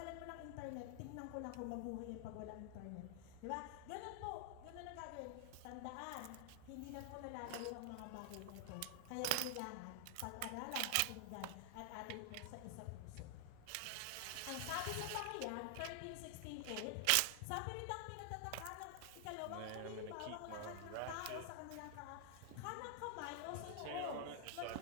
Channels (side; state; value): both; different; correlation 0.00